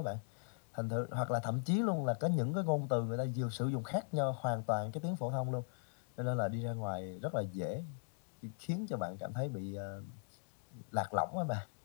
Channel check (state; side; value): silent; right; digital silence